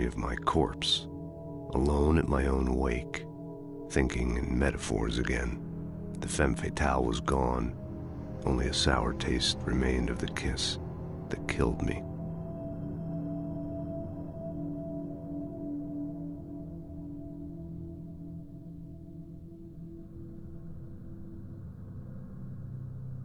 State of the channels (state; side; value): identical; both; correlation 1.00